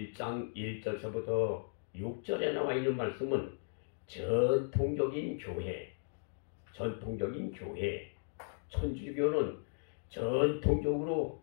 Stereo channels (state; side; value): silent; right; digital silence